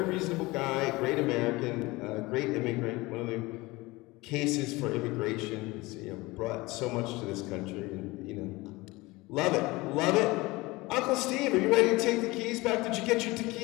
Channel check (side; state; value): right; quieter; 21.8 dB